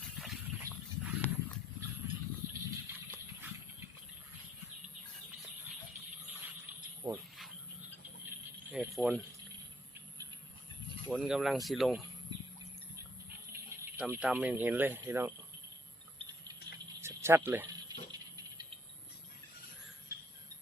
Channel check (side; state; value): both; normal; correlation 0.67